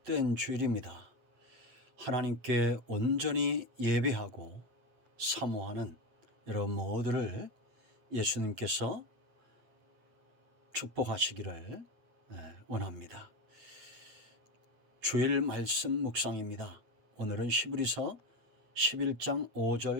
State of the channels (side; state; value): left; late; 8.5 ms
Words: 주일입니다. 하나님께 온전히 예배하고 사모하는 여러분 모두를 예수님께서 축복하시기를 원합니다. 주일 말씀 묵상입니다. 오늘은 히브리서 11장